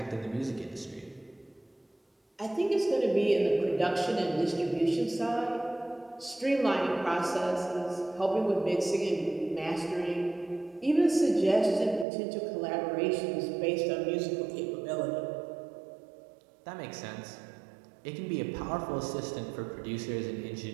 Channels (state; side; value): drops out; left; at 12.1 s